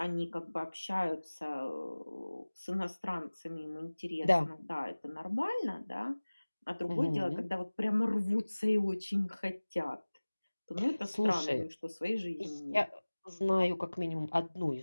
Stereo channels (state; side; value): inverted; both; correlation -1.00